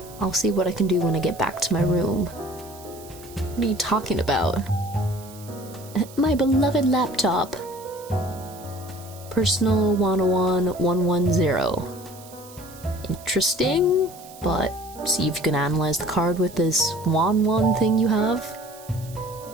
I'll see what I can do when I get back to my room. What are you talking about? My beloved laptop. Personal 101 110. Interesting, but see if you can analyze the card with this 1 thing you have.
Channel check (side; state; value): right; noise; hiss, 20 dB below the sound